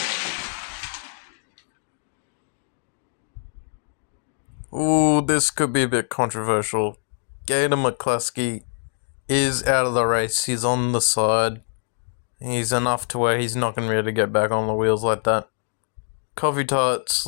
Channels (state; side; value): silent; right; digital silence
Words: Ooh, this could be a bit controversial. Gator McCluskey is out of the race. He's on the side. He's enough to where he's not going to be able to get back on the wheels like that. Coffee Tart